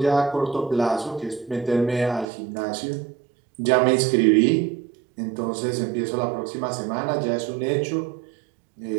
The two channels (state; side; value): drops out; left; at 2.2 s